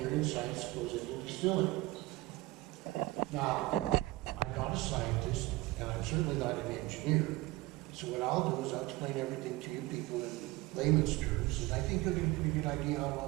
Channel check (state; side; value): quieter; left; 19.8 dB